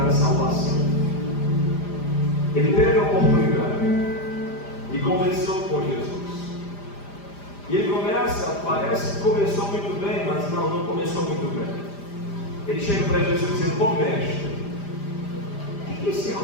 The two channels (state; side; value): late; right; 5.0 ms